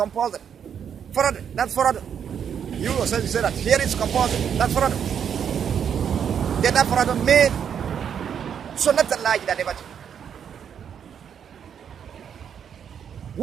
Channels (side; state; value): left; quieter; 8.1 dB